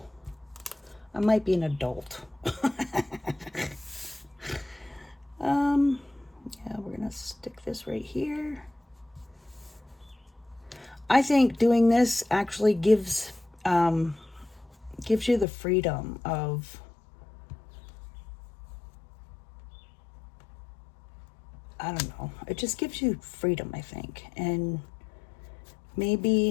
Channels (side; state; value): right; drops out; at 15.5 s